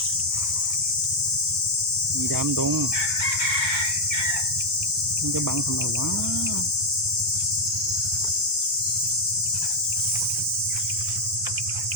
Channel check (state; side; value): normal; both; correlation 0.01